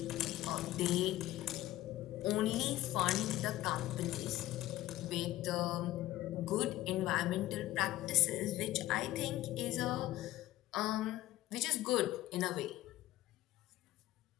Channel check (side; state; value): right; quieter; 15.6 dB